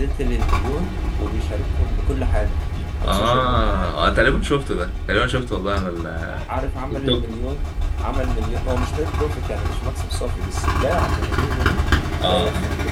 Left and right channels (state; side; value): identical; both; correlation 1.00